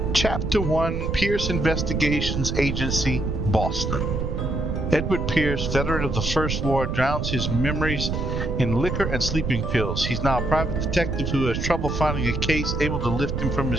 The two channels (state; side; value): noise; right; rumble, 2 dB below the sound